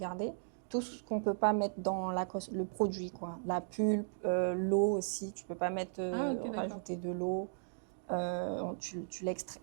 Tout ce qu'on ne peut pas mettre dans le produit, quoi. La pulpe, l'eau aussi, tu ne peux pas mettre, rajouter de l'eau. Tu l'extrais.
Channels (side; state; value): left; silent; digital silence